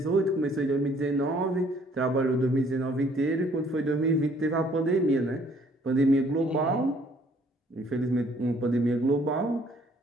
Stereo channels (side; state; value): both; normal; correlation 0.61